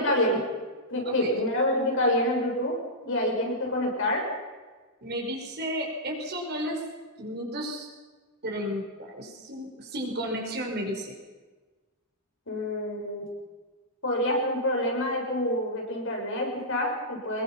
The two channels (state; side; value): normal; both; correlation -0.11